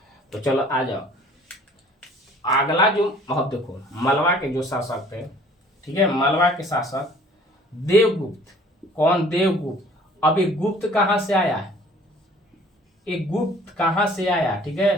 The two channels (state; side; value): normal; both; correlation 0.53